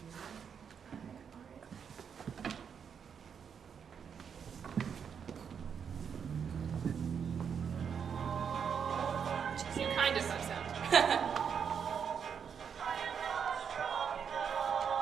You kind of have sound.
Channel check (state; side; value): quieter; left; 7.2 dB